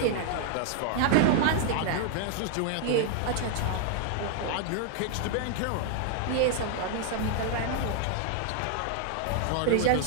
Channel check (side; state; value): both; different; correlation 0.00